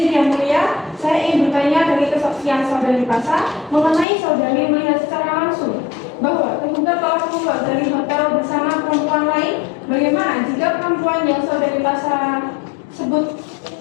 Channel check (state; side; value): drops out; right; at 4.0 s